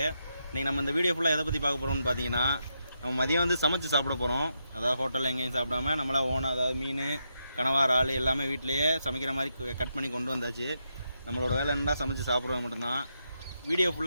இன்றைக்கி நம்ம இந்த வீடியோ ஃபுல்லாக எதை பற்றி பார்க்க போகிறோம்னு பார்த்தீங்கன்னா, நம்ம மதியம் வந்து சமைச்சு சாப்பிட போகிறோம். அதாவது ஹோட்டலில் எங்கேயும் சாப்பிடாம நம்மளாம் ஓனாக, அதாவது மீன், கனவா, இறால் எல்லாமே வீட்டிலையே சமைக்கிற மாதிரி கட் பண்ணி கொண்டு வந்தாச்சு. நம்மளோட வேலை என்னன்னா சமைச்சு சாப்பிட்றது மட்டும்தான். வீடியோ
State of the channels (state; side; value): inverted; both; correlation -0.83